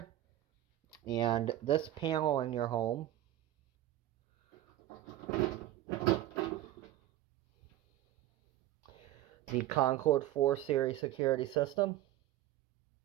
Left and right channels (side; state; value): left; quieter; 14.1 dB